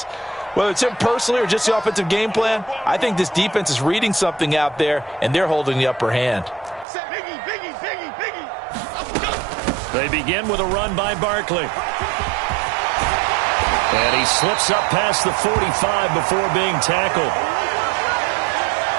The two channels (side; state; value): left; drops out; at 6.9 s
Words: Whether it's him personally or just the offensive game plan, I think this defense is reading something out there, and they're holding the upper hand. They begin with a run by Barkley. And he slips up past the 45 before being tackled.